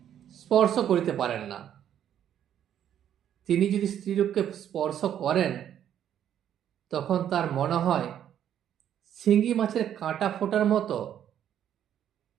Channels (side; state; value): left; quieter; 10.1 dB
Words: স্পর্শ করিতে পারেন না। তিনি যদি স্ত্রীলোককে স্পর্শ করেন, তখন তার মনে হয় শিঙি মাছের কাঁটা ফোটার মতো